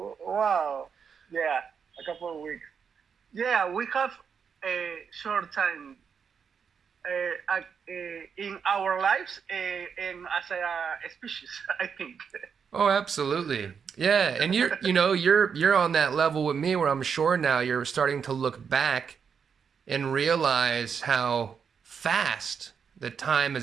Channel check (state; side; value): quieter; left; 6.6 dB